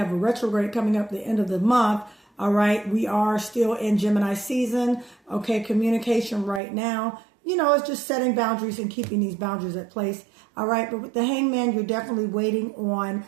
a retrograde coming up the end of the month. All right. We are still in Gemini season. Okay. Communication right now, it's just setting boundaries and keeping these boundaries at place. All right. But with the Hangman, you're definitely waiting on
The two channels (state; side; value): drops out; left; at 6.6 s